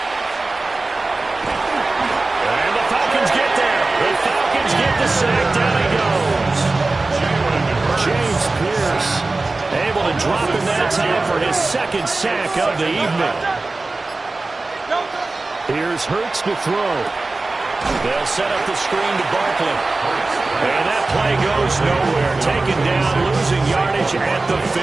And the Falcons get there. The Falcons get the sack. Down he goes. James Pierce able to drop in that time for his 2nd sack of the evening. Here's Hurts to throw. They'll set up the screen to Barkley. And that play goes nowhere. Taken down, losing yardage at the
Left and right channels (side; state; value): left; quieter; 3.3 dB